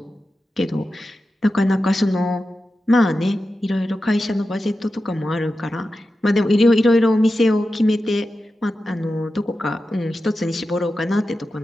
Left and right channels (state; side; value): normal; both; correlation 0.92